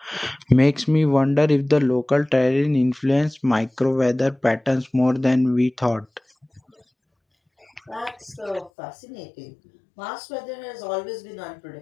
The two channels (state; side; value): drops out; right; at 8.7 s